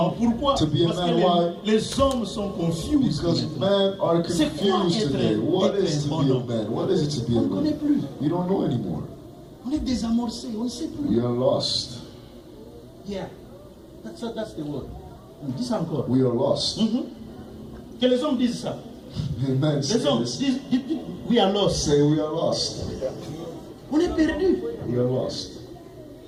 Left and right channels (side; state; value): both; identical; correlation 1.00